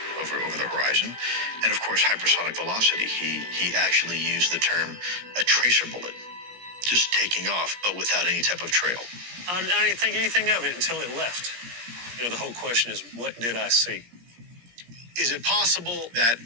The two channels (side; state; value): left; late; 17 ms